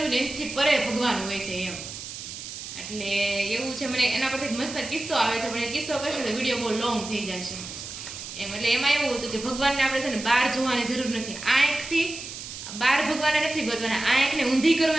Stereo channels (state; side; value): noise; right; hiss, 10 dB below the sound